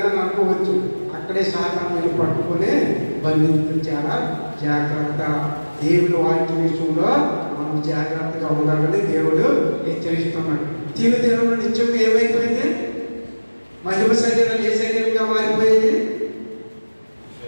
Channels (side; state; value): both; inverted; correlation -1.00